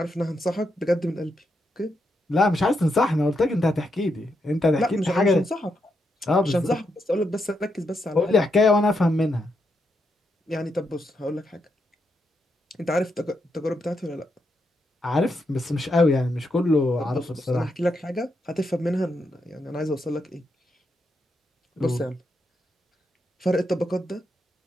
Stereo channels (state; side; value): normal; both; correlation 0.82